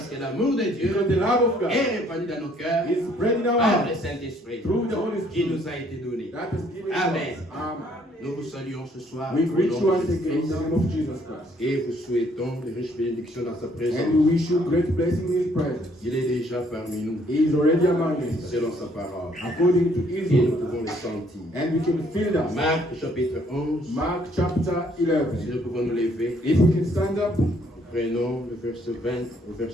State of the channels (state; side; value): normal; both; correlation 0.64